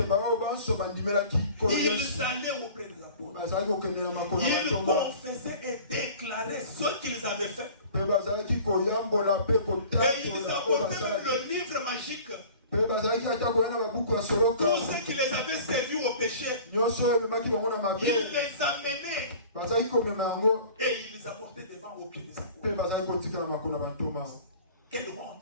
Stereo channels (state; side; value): inverted; both; correlation -0.45